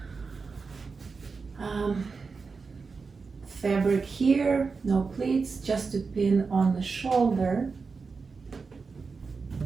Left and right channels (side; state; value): left; quieter; 4.7 dB